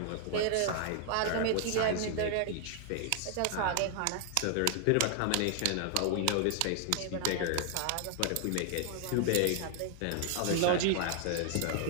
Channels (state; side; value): different; both; correlation 0.00